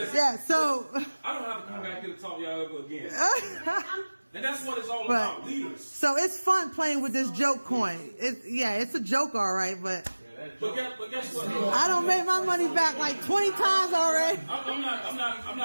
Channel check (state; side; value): inverted; both; correlation -1.00